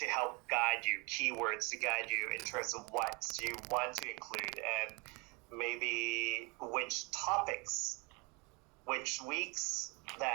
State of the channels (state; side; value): quieter; left; 29.5 dB